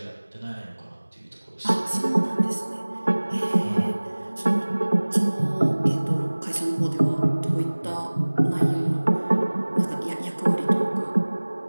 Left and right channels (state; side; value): inverted; both; correlation -1.00